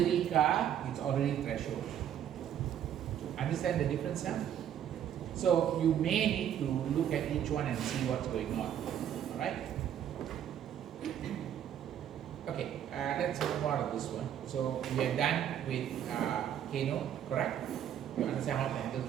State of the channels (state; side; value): quieter; left; 10.0 dB